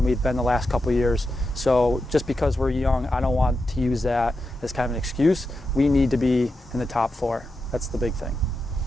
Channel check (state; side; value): normal; both; correlation 0.88